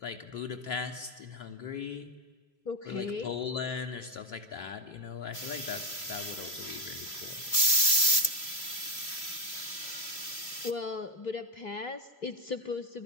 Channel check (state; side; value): late; right; 3.0 ms